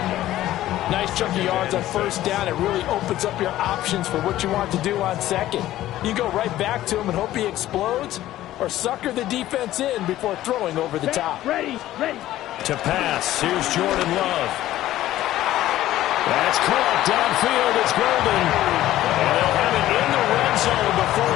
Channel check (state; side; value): quieter; right; 14.3 dB